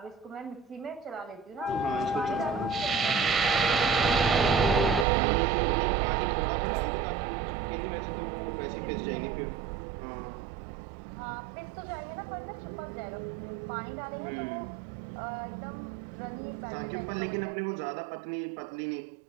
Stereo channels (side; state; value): left; drops out; at 5.1 s